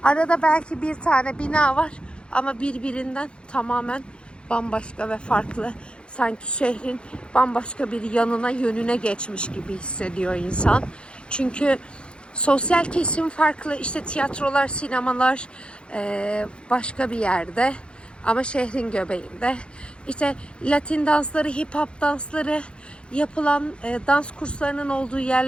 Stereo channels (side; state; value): right; late; 0.055 ms